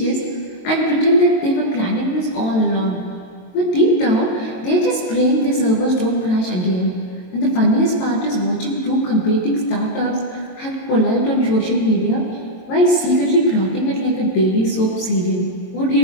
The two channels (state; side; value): late; right; 22 ms